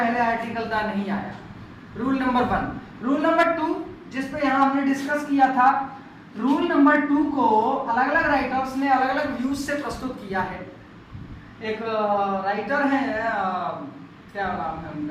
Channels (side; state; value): both; identical; correlation 1.00